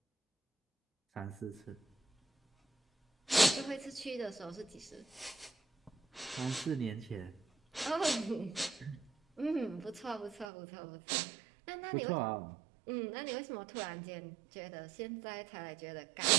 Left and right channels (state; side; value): drops out; left; at 10.5 s